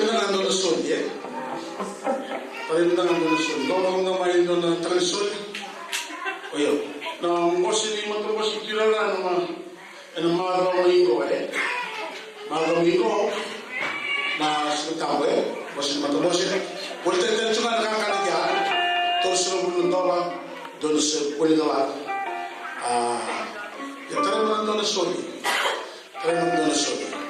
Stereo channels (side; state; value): both; identical; correlation 1.00